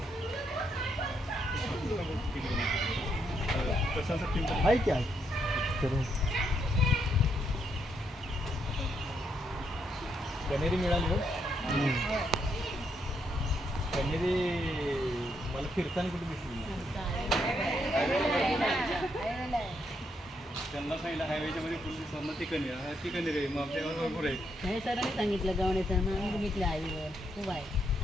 आहे की आहे करून कनेरी मिळाली हो कनेरी मला फिरताना कुठे दिसली त्यांना सांगितलं हायवेच्या मध्ये फुल दिसणार ती कनेरी आहे मग आपल्यावर भरपूर आहे हे सरांनी सांगितलं गवण्याचं मग आम्ही बघितलं हायवेवर खूप आहे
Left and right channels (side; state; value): both; normal; correlation 0.77